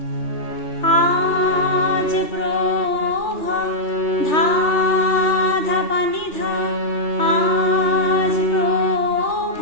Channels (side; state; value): right; late; 3.3 ms